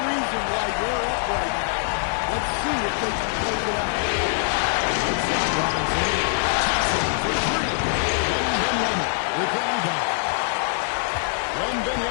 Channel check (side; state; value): right; silent; 62 dB below the other